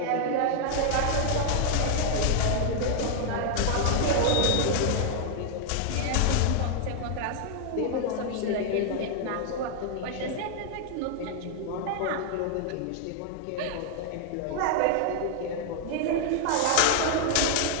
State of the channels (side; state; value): both; different; correlation 0.00